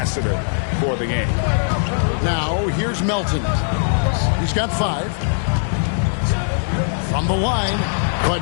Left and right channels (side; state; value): right; silent; digital silence